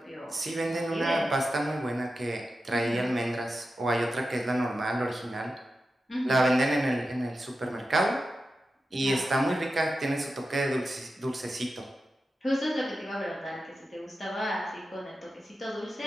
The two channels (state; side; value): normal; both; correlation 0.91